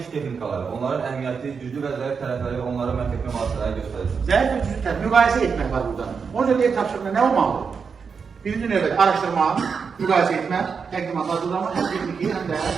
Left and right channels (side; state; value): left; quieter; 5.8 dB